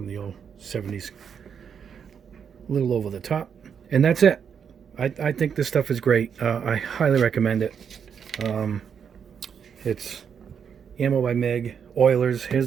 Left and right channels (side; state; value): left; quieter; 7.3 dB